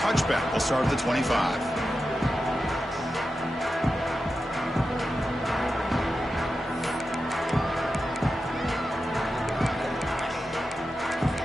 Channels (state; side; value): normal; both; correlation 0.91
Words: will start at the 25.